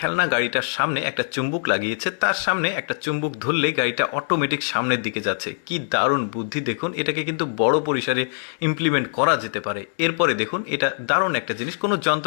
গাড়িটার সামনে একটা চুম্বক লাগিয়েছে, তার সামনে একটা চুম্বক ধরলে গাড়িটা অটোমেটিক সামনের দিকে যাচ্ছে। কি দারুণ বুদ্ধি দেখুন, এটাকে কিন্তু বড় পরিসরে ইমপ্লিমেন্ট করা যেতে পারে। এরপরে দেখুন, এটা দারুণ একটা জিনিস, কোনো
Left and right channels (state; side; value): silent; right; digital silence